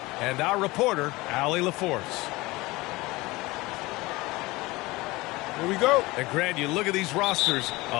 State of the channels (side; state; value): right; quieter; 21.3 dB